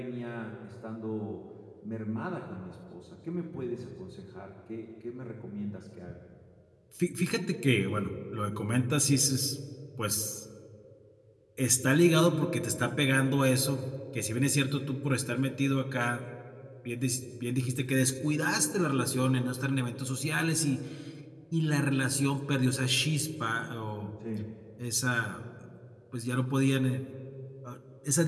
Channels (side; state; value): both; identical; correlation 1.00